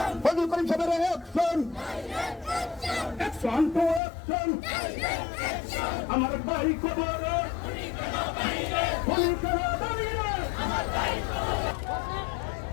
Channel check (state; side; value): drops out; right; at 4.0 s